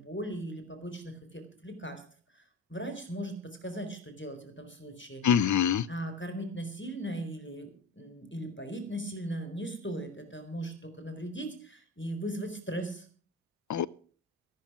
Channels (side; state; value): right; quieter; 4.0 dB